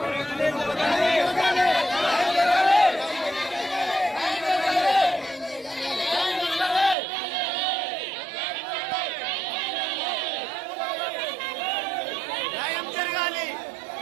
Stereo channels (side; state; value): left; drops out; at 7.0 s